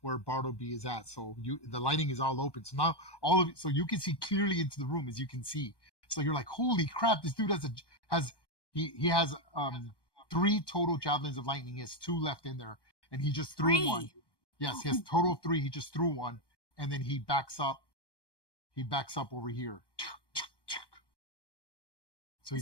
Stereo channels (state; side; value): late; right; 1.2 ms